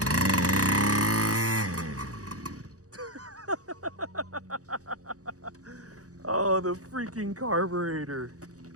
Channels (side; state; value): left; late; 0.66 ms